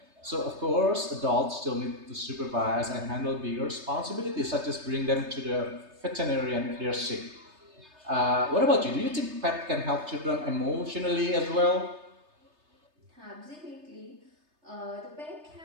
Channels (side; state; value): left; late; 3.3 ms